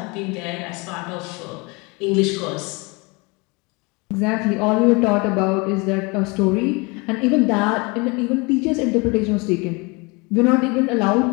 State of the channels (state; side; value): quieter; right; 27.8 dB